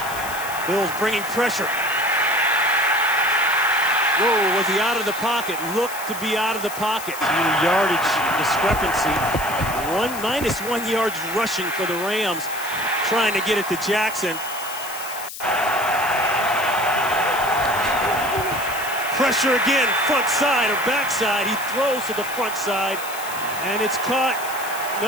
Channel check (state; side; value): noise; left; hiss, 11 dB below the sound